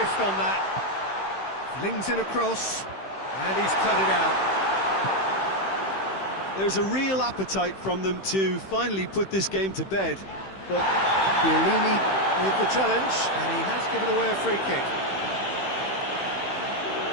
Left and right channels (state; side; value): late; right; 15 ms